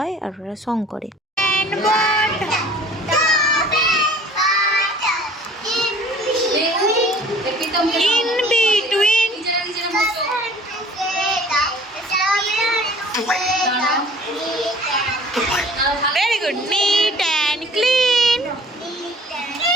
আর ওরা সং করে। In between. Very good. Neat and clean.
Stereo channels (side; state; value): both; normal; correlation 0.49